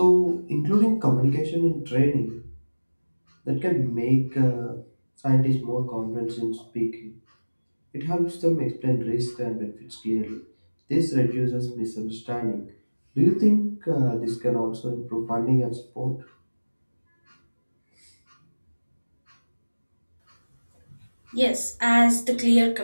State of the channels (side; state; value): both; inverted; correlation -1.00